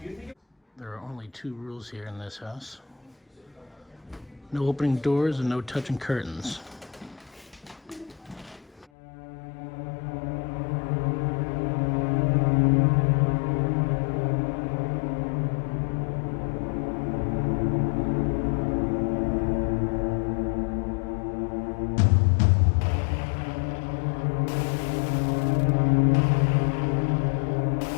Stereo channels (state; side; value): drops out; right; at 8.8 s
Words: There are only 2 rules here in this house. No opening doors and no touching curtains.